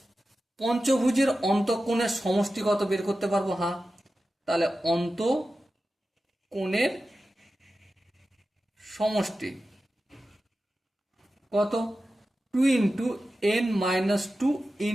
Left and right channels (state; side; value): normal; both; correlation 0.93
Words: পঞ্চভুজের অন্তঃকোণের সমষ্টি কত বের করতে পারবো? হ্যাঁ, তাহলে অন্তঃকোণের সমষ্টি কত? 2 × n-2 ×